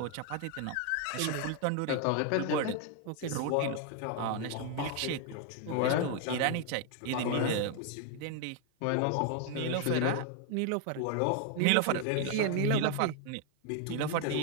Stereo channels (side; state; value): both; different; correlation 0.00